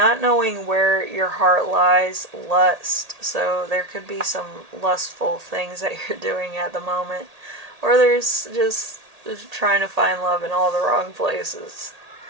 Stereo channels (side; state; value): left; late; 1.8 ms